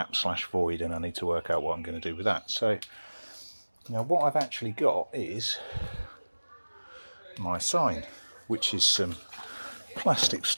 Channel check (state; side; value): inverted; both; correlation -1.00